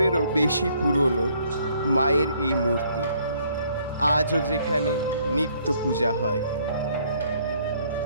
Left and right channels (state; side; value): inverted; both; correlation -0.65